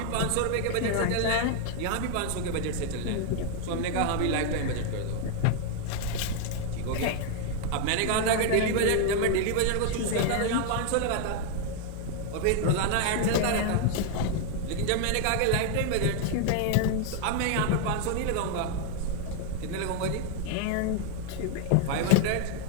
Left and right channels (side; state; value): both; different; correlation 0.00